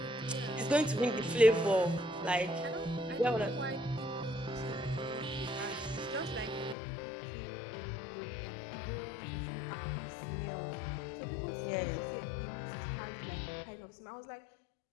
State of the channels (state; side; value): drops out; right; at 6.8 s